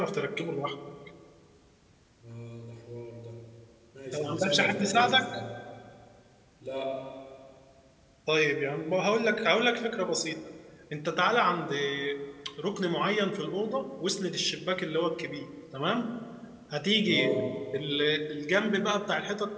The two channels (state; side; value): identical; both; correlation 1.00